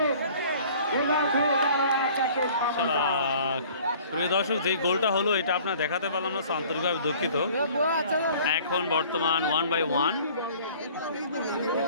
প্রিয় দর্শক, যেই গোলটা হলো এটা আপনার দেখাতে পারলাম না, আন্তরিকভাবে দুঃখিত। এখন বর্তমান 1-1।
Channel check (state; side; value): inverted; both; correlation -0.51